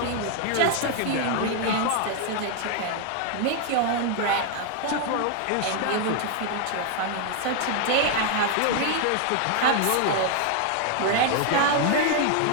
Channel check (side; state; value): both; different; correlation 0.00